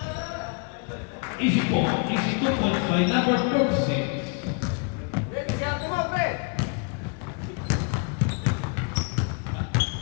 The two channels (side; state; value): right; quieter; 37.0 dB